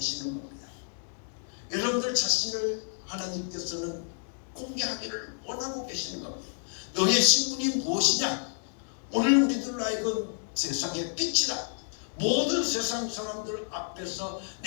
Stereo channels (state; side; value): silent; right; digital silence